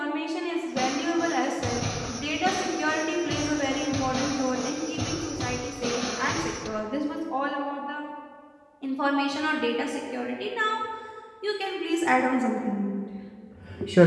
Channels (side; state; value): both; identical; correlation 1.00